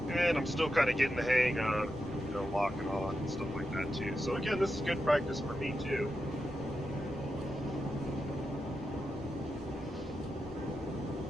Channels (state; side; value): normal; both; correlation 0.88